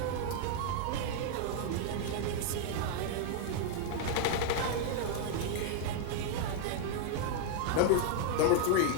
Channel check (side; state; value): both; different; correlation 0.00